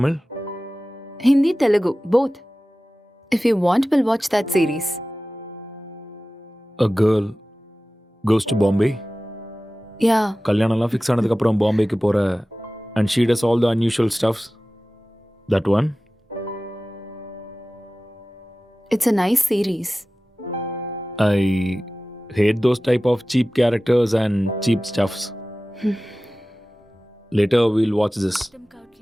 Hindi, Telugu, both. If you want, we'll watch that series. A girl goes to Bombay. Yeah, கல்யாணம்லாம் fix ஆனதுக்கு அப்புறம் பாம்பேக்கு போற and she does all the unusual stuffs. That one? it's a nice series. I hate those type of cheap characters and cheap stuffs. Later we'll watch this.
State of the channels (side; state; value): both; normal; correlation 0.96